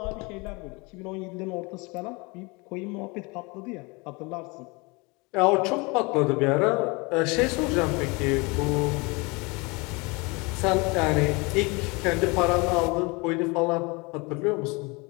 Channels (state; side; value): quieter; right; 27.4 dB